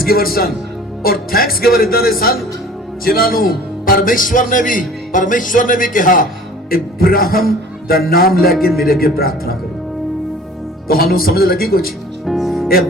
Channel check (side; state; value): both; normal; correlation 0.47